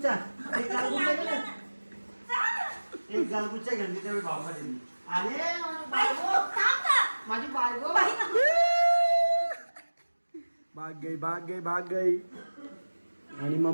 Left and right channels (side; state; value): both; inverted; correlation -1.00